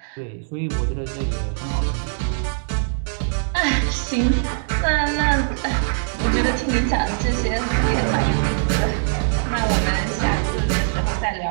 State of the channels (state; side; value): silent; left; digital silence